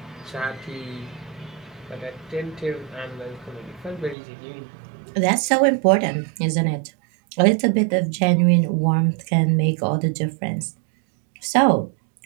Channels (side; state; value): left; drops out; at 4.2 s